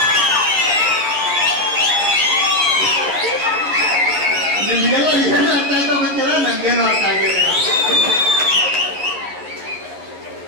ನಿಮ್ಗೆಲ್ಲ ಏನು ಅರ್ಥ ಆಯ್ತಾ ಗೊತ್ತಿಲ್ಲ, ನಂಗೇನು ಅರ್ಥ ಆಗಿಲ್ಲ.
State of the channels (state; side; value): late; left; 11 ms